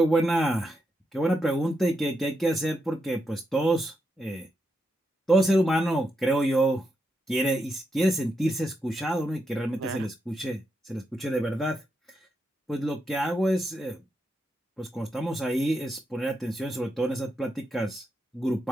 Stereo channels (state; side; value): normal; both; correlation 0.83